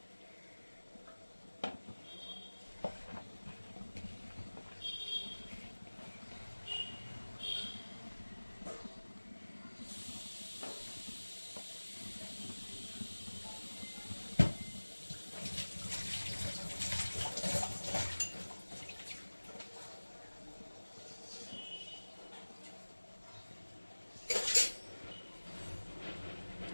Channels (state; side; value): inverted; both; correlation -1.00